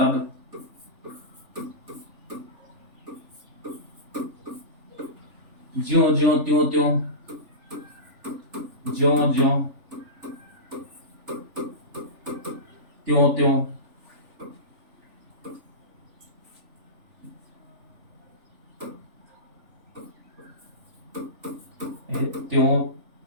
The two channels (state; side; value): late; left; 3.4 ms